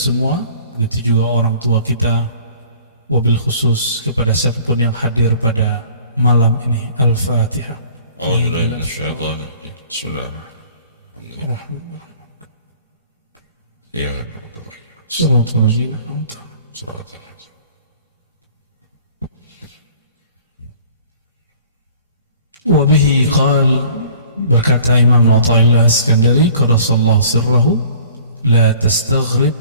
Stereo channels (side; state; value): both; inverted; correlation -0.51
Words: begitu juga orang tua kita, wabil khusus kepada siapapun yang hadir pada malam ini. Al-Fatihah. Bismillahirrahmanirrahim. Ya, Wabihi qal, berkata Imam Athaillah Iskandari qaddasallahu sirrahu, la tastaghrib